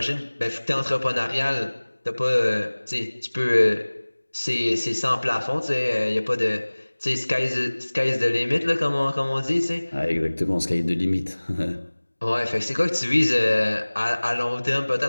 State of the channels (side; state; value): both; inverted; correlation -1.00